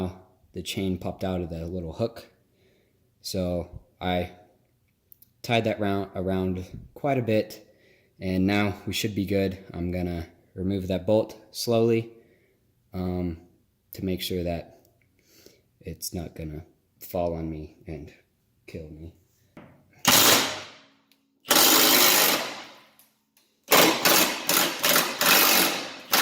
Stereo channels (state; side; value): identical; both; correlation 1.00